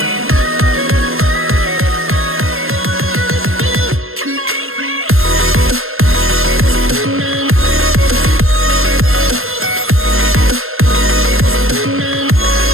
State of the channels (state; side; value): late; left; 0.61 ms